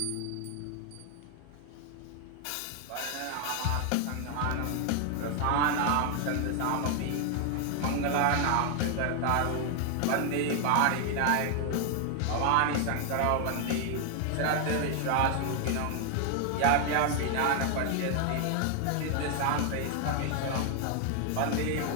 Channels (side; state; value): both; different; correlation 0.00